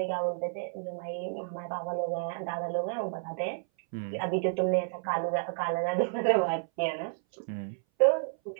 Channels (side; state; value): left; silent; 57 dB below the other